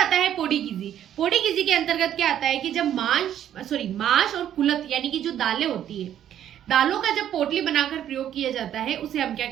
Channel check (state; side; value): quieter; left; 10.6 dB